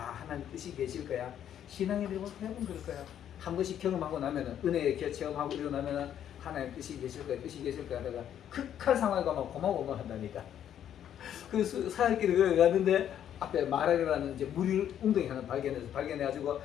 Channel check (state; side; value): quieter; right; 10.1 dB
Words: 뜻이 계실 거야. 신앙에 대해 해본 그럴 거야. 한 번씩 경험하고 나면은 은혜에 체험하고 일어나면은 하나님 뜻이 계실 거야. 뜻이 계실 거야. 내가 극한 상황에 가면 고마워 한다니까. 그 사흘길을 갔는데 앞에 마라라는 이제 물 웅덩이 하나 발견해가지고